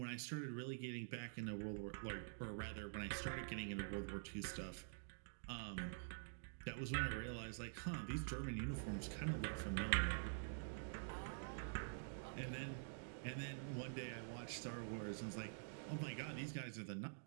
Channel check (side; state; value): left; silent; digital silence